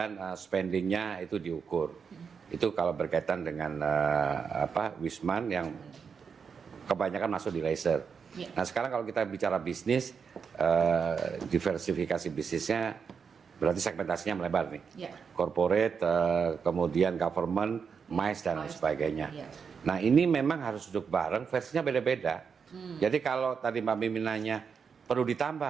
spendingnya itu diukur. Itu kalau berkaitan dengan Wisman yang kebanyakan masuk di leisure. Nah sekarang kalau kita bicara bisnis, diversifikasi bisnisnya berarti segmentasinya melebar nih. Corporate, kemudian government, MICE dan lain sebagainya. Nah ini memang harus duduk bareng, versinya beda-beda. Jadi kalau tadi Mbak Mimi nanya perlu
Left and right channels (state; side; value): quieter; left; 6.2 dB